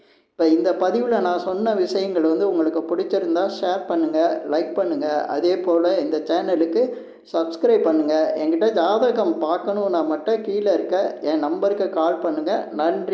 இப்போ இந்த பதிவில் நான் சொன்ன விஷயங்கள் வந்து உங்களுக்கு பிடிச்சிருந்தா ஷேர் பண்ணுங்கள், லைக் பண்ணுங்கள். அதே போல் இந்த சேனலுக்கு சப்ஸ்கிரைப் பண்ணுங்கள். என்கிட்ட ஜாதகம் பார்க்கணுன்னா மட்டும் கீழே இருக்க என் நம்பருக்கு கால் பண்ணுங்கள்.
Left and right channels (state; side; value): identical; both; correlation 1.00